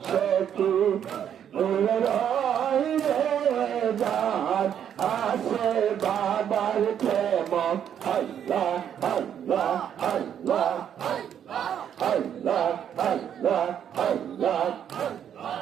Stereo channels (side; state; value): left; quieter; 9.2 dB